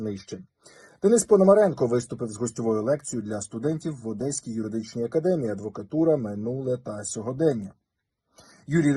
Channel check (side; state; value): both; identical; correlation 1.00